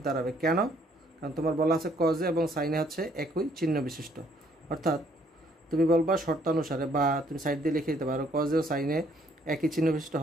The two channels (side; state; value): both; normal; correlation 0.65